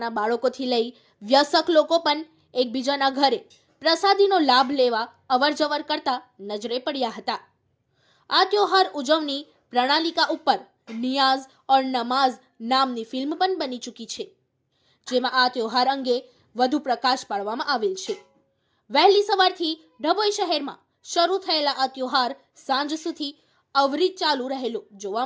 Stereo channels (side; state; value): both; identical; correlation 1.00